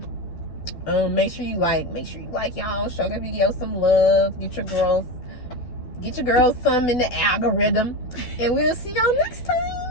Make sure you like y'all. Show the video some love. Get your girls some in the algorithm. And we'll see y'all next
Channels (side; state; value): right; late; 12 ms